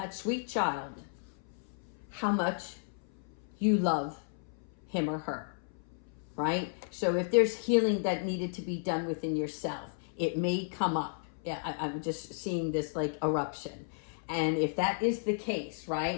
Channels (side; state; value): right; silent; 56 dB below the other